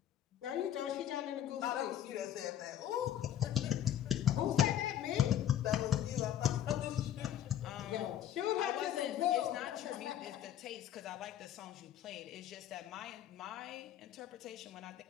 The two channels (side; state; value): right; quieter; 10.9 dB